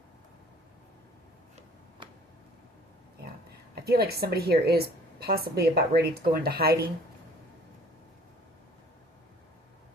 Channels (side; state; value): both; normal; correlation 0.54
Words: Yeah. I feel like somebody here is possibly about ready to go into hiding.